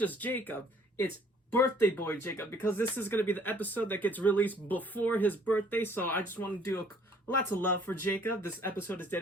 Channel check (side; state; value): both; normal; correlation 0.58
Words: Jacob, it's birthday boy Jacob, because this is going to be the episode that gets released before his birthday, so I just want to do lots of love for Jacob. This episode is